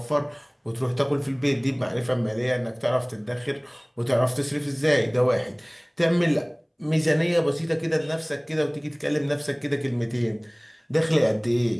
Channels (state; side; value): identical; both; correlation 1.00